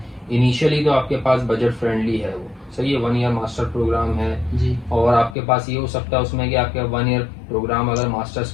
इनिशियली तो आपके पास बजट फ्रेंडली है, वो सही है, 1 ईयर मास्टर प्रोग्राम है जी। और आपके पास ये हो सकता है उसमें कि आपके 1 ईयर प्रोग्राम अगर मास्टर्स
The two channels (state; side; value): drops out; right; at 5.4 s